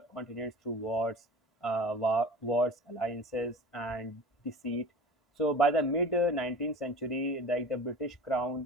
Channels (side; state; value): both; normal; correlation 0.37